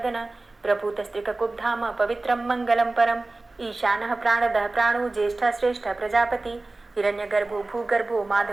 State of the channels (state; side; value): quieter; left; 3.1 dB